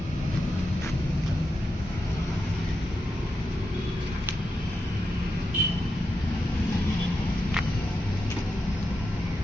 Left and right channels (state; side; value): normal; both; correlation 0.86